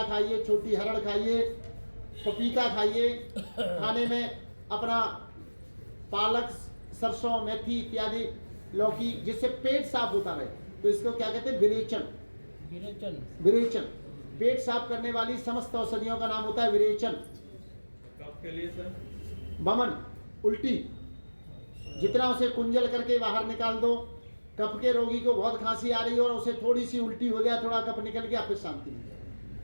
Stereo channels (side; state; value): both; inverted; correlation -1.00